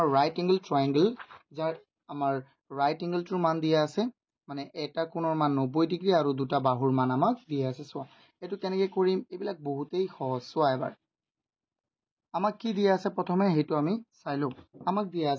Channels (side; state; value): both; identical; correlation 1.00